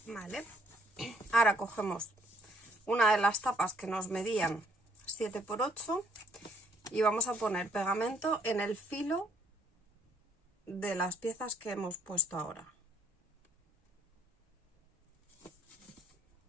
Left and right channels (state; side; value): normal; both; correlation 0.66